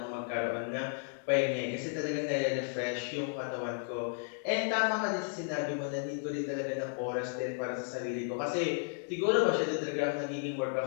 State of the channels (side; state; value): right; silent; 55 dB below the other